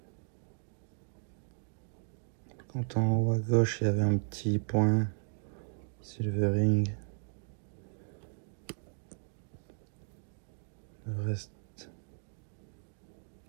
Quand en haut à gauche, il y avait un petit point. Silvering. Le reste,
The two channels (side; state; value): left; silent; digital silence